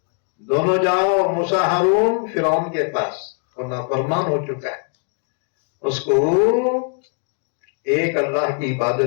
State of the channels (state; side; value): quieter; right; 39.6 dB